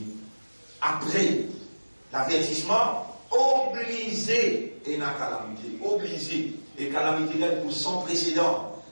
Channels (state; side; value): inverted; both; correlation -1.00